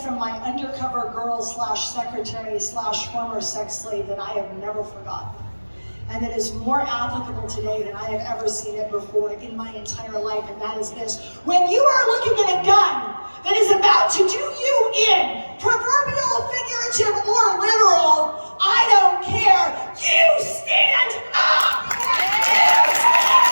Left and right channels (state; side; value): inverted; both; correlation -1.00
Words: my undercover girl slash secretary slash former sex slave that I have never forgotten. And it is more applicable today than I have ever seen it before in my entire life, and that is this. When you are looking at a gun that is about to do you in, proverbial, figurative, or literal, I don't care, you stand up! You